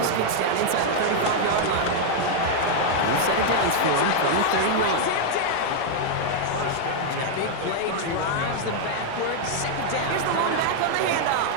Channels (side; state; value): both; different; correlation 0.00